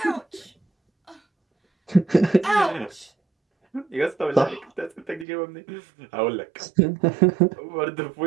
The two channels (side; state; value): left; drops out; at 5.2 s